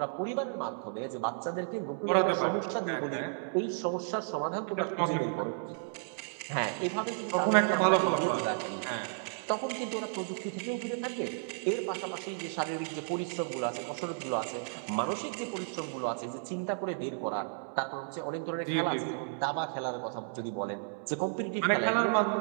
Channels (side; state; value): left; silent; digital silence